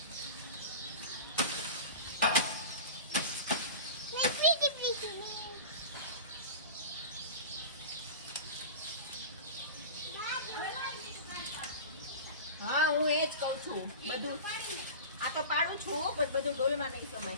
હા હું એ જ કહું છું. બધું આ તો પાડું છું પણ બધું ડોલમાં નહીં સમય.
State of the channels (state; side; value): inverted; both; correlation -0.32